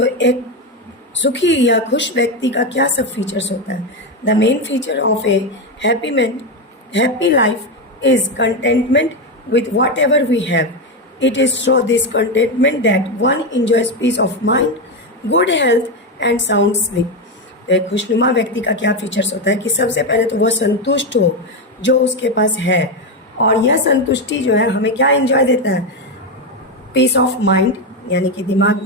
एक सुखी या खुश व्यक्ति का क्या सब फीचर्स होता है? The main feature of a happy man, happy life is contentment with whatever we have. It is through this contentment that one enjoys peace of mind, good health and sound sleep. तो एक खुशनुमा व्यक्ति का क्या फीचर्स होता है कि सबसे पहले तो वह संतुष्ट हो जो उसके पास है, और यह संतुष्टि जो है हमें क्या एंजॉय देता है? पीस ऑफ माइंड, यानी कि दिमाग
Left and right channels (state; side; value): normal; both; correlation 0.10